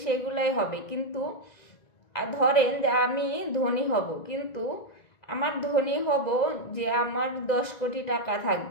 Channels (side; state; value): right; late; 1.9 ms